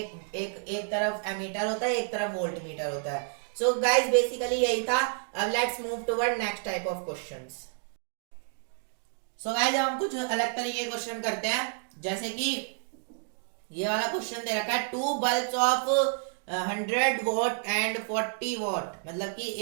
तरफ एमीटर होता है, एक तरफ वोल्ट मीटर होता है। सो गाइस बेसिकली यही था। अब let's move toward next type of questions. So guys हम कुछ अलग तरीके के क्वेश्चन करते हैं, जैसे कि ये वाला क्वेश्चन दे रखा है, two bulbs of 100 watt and 40 watt, मतलब कि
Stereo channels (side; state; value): left; silent; 57 dB below the other